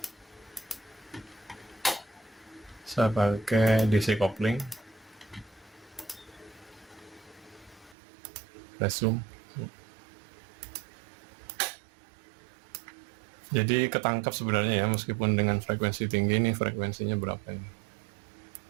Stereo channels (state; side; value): drops out; left; at 8.0 s